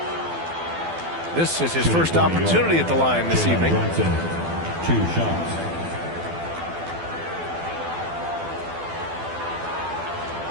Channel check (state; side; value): late; left; 12 ms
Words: This is his first opportunity at the line this evening. Brunson, 2 shots.